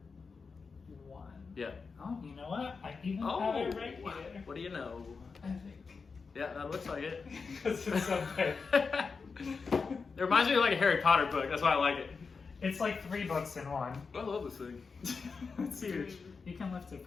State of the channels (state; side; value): quieter; right; 4.9 dB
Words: 1. Yeah. Oh, you know what? I even Oh, have it right here. what do you know? I think. Yeah, that looks like it. Because it's so big. It reminds me of like a Harry Potter book. That's why I like it. It's like 3 books in 1. I love this thing. It's huge. You can lift it